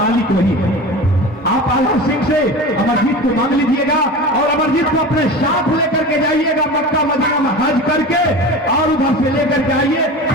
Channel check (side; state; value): both; normal; correlation 0.32